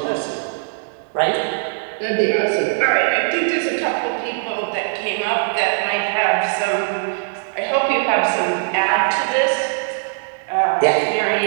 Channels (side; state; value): left; silent; digital silence